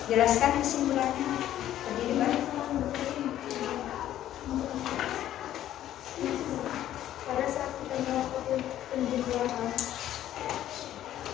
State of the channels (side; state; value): right; quieter; 12.3 dB